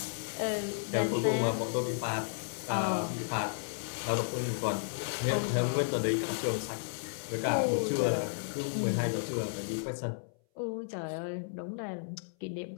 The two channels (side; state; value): right; silent; 56 dB below the other